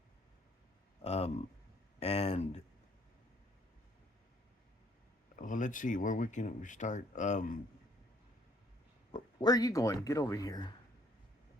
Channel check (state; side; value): normal; both; correlation 0.63